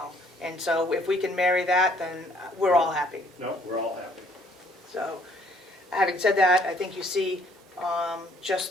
And so if we can marry that, then we're all happy. No, we're all happy. So, having said that, I think you see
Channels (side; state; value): both; normal; correlation 0.62